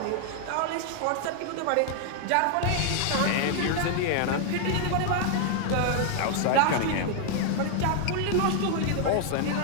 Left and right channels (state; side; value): different; both; correlation 0.00